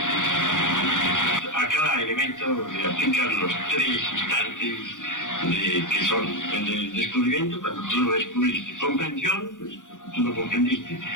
A cada elemento le aplican los 3 instantes que son el de descubrimiento, cuando tú lo descubriste, comprensión, pues, tú lo comprendiste,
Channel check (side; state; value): right; late; 0.87 ms